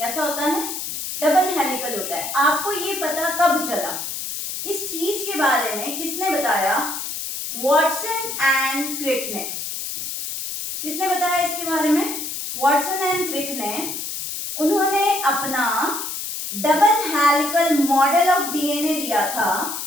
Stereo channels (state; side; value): noise; left; hiss, 5 dB below the sound